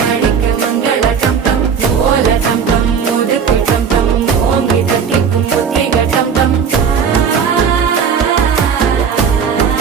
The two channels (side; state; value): left; quieter; 6.8 dB